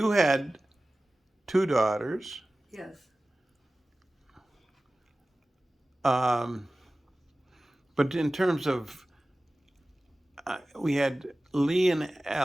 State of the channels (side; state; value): both; normal; correlation 0.97